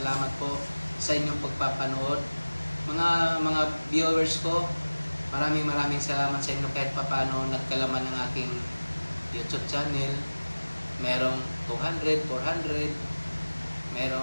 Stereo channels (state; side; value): inverted; both; correlation -1.00